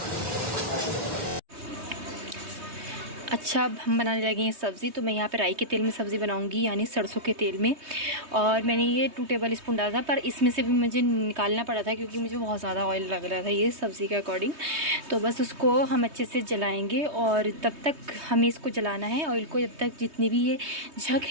अच्छा, अब हम बनाने लगे हैं सब्ज़ी। तो मैं यहाँ पे राई के तेल में सब्ज़ी बनाऊंगी, यानी सरसों के तेल में। और मैंने ये 2 टेबल स्पून डाला था, पर इसमें से भी मुझे निकालना पड़ा था क्योंकि मुझे बहुत ज़्यादा ऑयल लग रहा था ये सब्ज़ी के अकॉर्डिंग। तो बस उसको हम अच्छे से जलाएंगे और तब तक हमें इसको जलाना है ऑयल को, जब तक जितनी भी ये झक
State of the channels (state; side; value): late; left; 3.2 ms